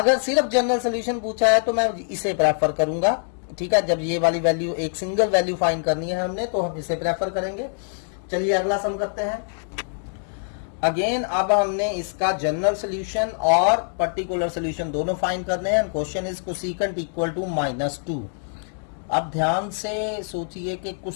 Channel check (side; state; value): right; silent; digital silence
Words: सिर्फ जनरल सोल्यूशन पूछा है तो मैं इसे प्रेफर करूंगा। ठीक है, जब ये वाली वैल्यू एक सिंगल वैल्यू फाइंड करनी है हमने तो हम इसे प्रेफर करेंगे। चलिए अगला सम करते हैं। अगेन अब हमने इसका जनरल सोल्यूशन और पर्टिकुलर सोल्यूशन दोनों फाइंड करने हैं। Question is cosecant equal to -2। अब ध्यान से सोचिए कि